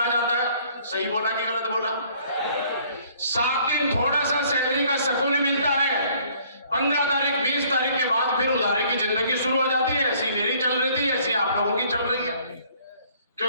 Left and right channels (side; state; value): both; inverted; correlation -0.59